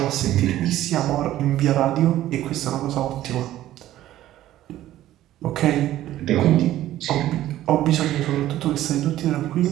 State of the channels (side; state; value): left; quieter; 13.8 dB